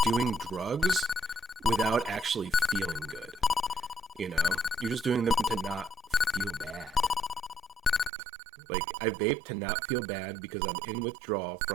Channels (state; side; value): drops out; left; at 8.1 s